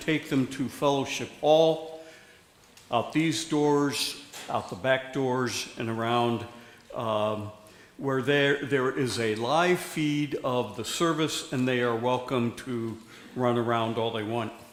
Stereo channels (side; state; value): both; identical; correlation 1.00